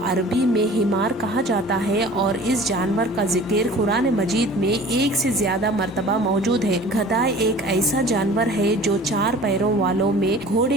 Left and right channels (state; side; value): normal; both; correlation 0.45